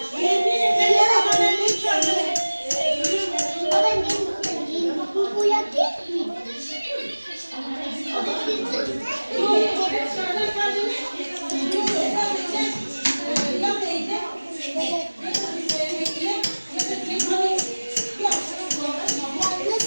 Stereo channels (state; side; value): inverted; both; correlation -1.00